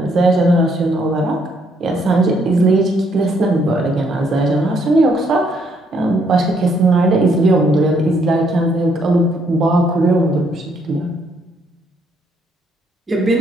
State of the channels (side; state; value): both; normal; correlation 0.70